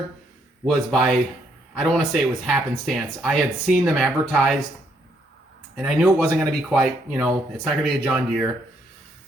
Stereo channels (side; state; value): both; normal; correlation 0.72